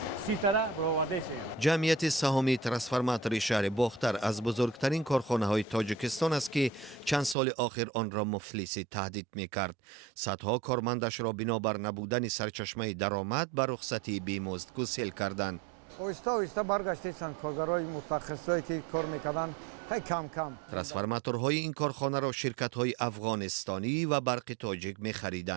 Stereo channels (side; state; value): left; drops out; at 7.4 s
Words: 30 تا برآوردهشان. جمعیت سهامی ترانسفورماتور شهر باختر از بزرگترین کارخانه های تاجیکستان است که چند سال آخر آن را مفلسی تهدید می‌کرد. صدها کارمندش را بنابر نبودن سرچشمه درآمد به رخصتی بیمزد گسیل کردند. ترانسفورماتورهای این کارخانه را شرکت‌های افغانستانی و برق تاجیک